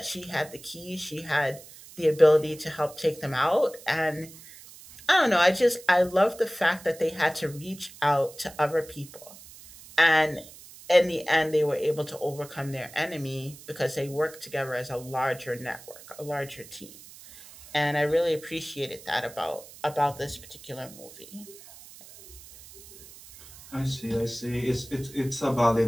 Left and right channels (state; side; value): noise; right; hiss, 19 dB below the sound